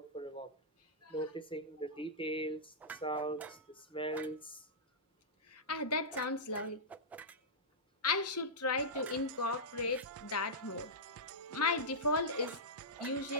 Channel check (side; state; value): both; normal; correlation -0.13